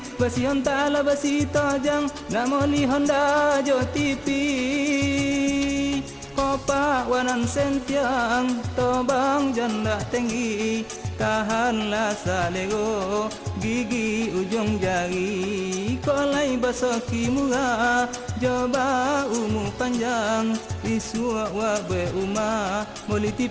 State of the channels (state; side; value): identical; both; correlation 1.00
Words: basi hontala basi tojang, namoli Honda jo TV. Kopa wanan sentiang, tobang janda tinggi, tahanlah salego, gigi ujung jari, kolai basoki murah, coba umu panjang, isua wabe umah, moli